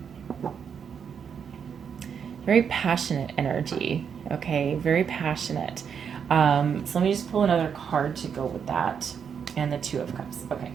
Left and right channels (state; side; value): quieter; left; 7.2 dB